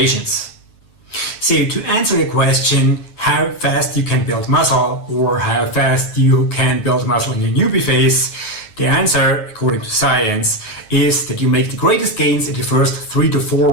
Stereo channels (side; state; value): right; late; 9.8 ms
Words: So to answer the question how fast you can build muscle or how fast you can build muscle in your newbie phase, the answer, according to science, is that you make the greatest gains in the first 3 to 4